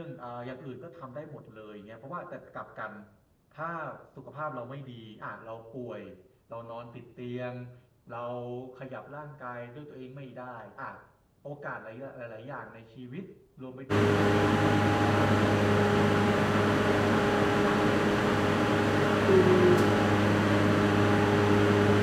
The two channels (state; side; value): identical; both; correlation 1.00